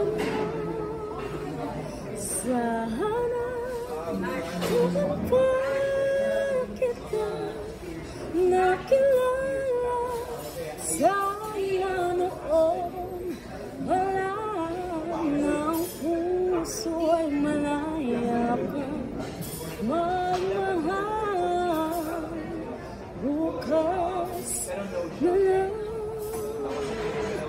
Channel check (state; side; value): identical; both; correlation 1.00